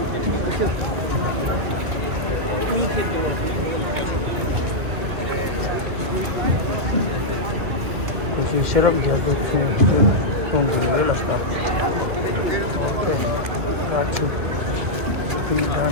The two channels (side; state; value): left; late; 2.3 ms